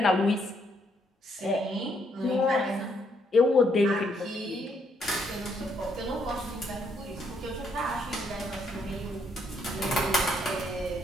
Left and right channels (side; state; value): both; normal; correlation 0.72